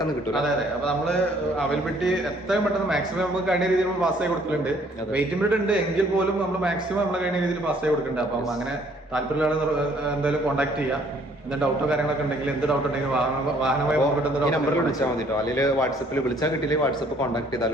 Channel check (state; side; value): normal; both; correlation 0.62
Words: കിട്ടും. അതെ അതെ. അപ്പൊ നമ്മള് അവൈലബിലിറ്റി എത്രയും പെട്ടെന്ന് മാക്സിമം നമുക്ക് കഴിഞ്ഞ രീതിയിൽ നമ്മൾ പാസ് ആയി കൊടുക്കുന്നുണ്ട്. വെയിറ്റിംഗ് പീരീഡ് ഉണ്ട് എങ്കിൽ പോലും നമ്മൾ മാക്സിമം നമ്മളെ കഴിഞ്ഞ രീതിയിൽ പാസ് ആയി കൊടുക്കുന്നുണ്ട്. അപ്പം അങ്ങനെ താല്പര്യമുള്ള എന്തായാലും കോൺടാക്ട് ചെയ്യാം. എന്തെങ്കിലും ഡൗട്ടോ കാര്യങ്ങളൊക്കെ ഉണ്ടെങ്കിൽ എന്ത് ഡൗട്ട് ഉണ്ടെങ്കിൽ വാഹനമായി നമ്പറിൽ വിളിച്ചാൽ മതി കേട്ടോ. അല്ലെങ്കിൽ വാട്സപ്പിൽ വിളിച്ചാൽ കിട്ടിയില്ലെങ്കിൽ വാട്സപ്പ് കോൺടാക്ട്